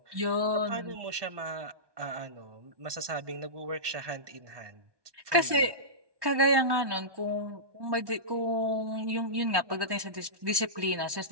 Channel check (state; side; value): late; left; 1.2 ms